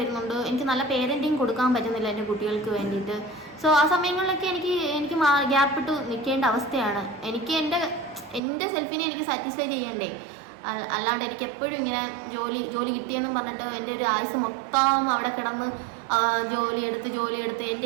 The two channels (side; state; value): left; drops out; at 8.4 s